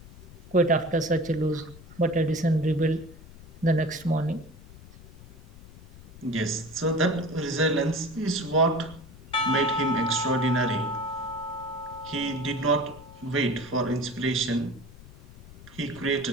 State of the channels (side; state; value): left; noise; rumble, 19 dB below the sound